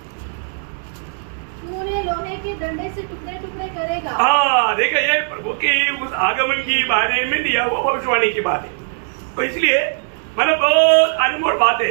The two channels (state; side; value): silent; left; digital silence